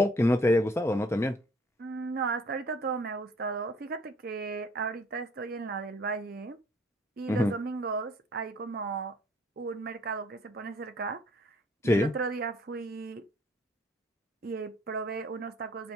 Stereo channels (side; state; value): both; normal; correlation 0.60